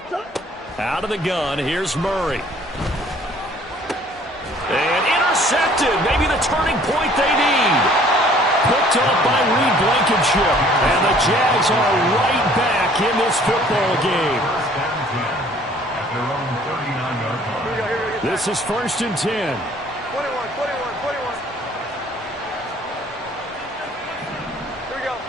Out of the gun, here's Murray. And intercepted. Maybe the turning point they need. Picked up by Reed Blankenship. And the Jags are right back in this football game. This is 1st and 10. 21. Here we go.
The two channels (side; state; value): both; normal; correlation 0.56